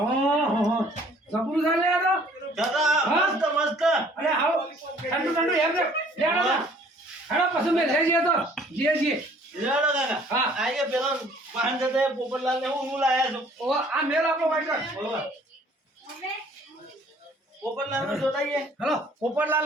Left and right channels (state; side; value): normal; both; correlation 0.56